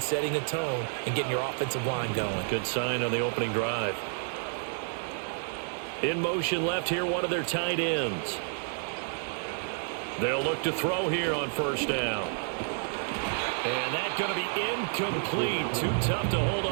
setting a tone and getting your offensive line going. Good sign on the opening drive. In motion left here, one of their tight ends. They'll look to throw here on 1st down. And that's going to be incomplete. Too tough to hold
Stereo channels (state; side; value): silent; left; 56 dB below the other